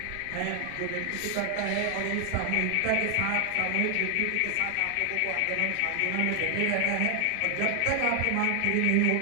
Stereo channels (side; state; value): both; different; correlation 0.00